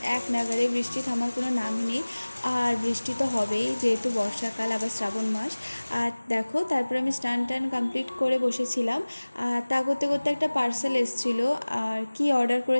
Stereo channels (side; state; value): both; inverted; correlation -1.00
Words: এক নাগাড়ে বৃষ্টি থামার কোনো নামই নেই। আর বৃষ্টি তো হবেই, যেহেতু বর্ষাকাল, আবার শ্রাবণ মাস। আর দেখো, তারপরে আমি স্নান টান কমপ্লিট করে বসেছিলাম। আর তা করতে করতে একটা পার্সেল এসেছিলো। আর কি অর্ডার